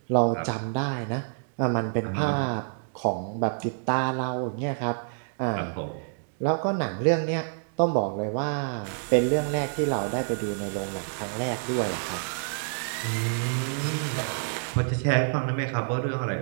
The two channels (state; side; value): silent; left; digital silence